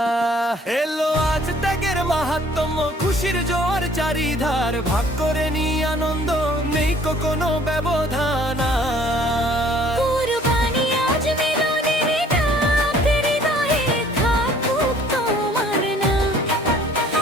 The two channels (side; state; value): both; normal; correlation 0.56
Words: এলো আজ ত্যাগের মাহাত্ম্য, খুশির জোয়ার চারিধার, ভাগ করে নি আনন্দ, নেই কোনো ব্যবধান আর। কুরবানি আজ মিলনের ডাক, হৃদয়ে থাকুক তোমার নাম।